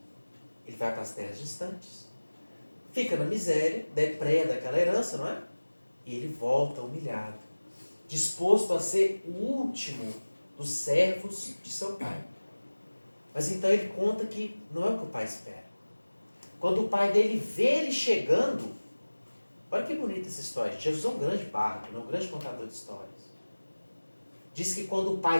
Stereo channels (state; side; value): inverted; both; correlation -1.00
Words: fica na miséria, depreda aquela herança, não é? E ele volta humilhado, disposto a ser o último dos servos de seu pai. Mas então ele conta que não é o que o pai espera. Quando o pai dele vê ele chegando, olha que bonita essa história. Jesus é um grande bárbaro, um grande contador de histórias. Diz que quando o